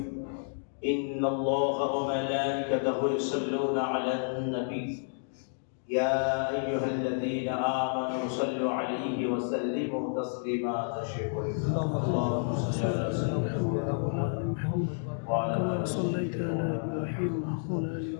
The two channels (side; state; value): right; silent; digital silence